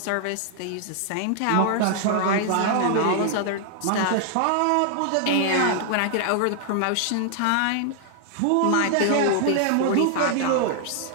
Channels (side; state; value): both; different; correlation 0.00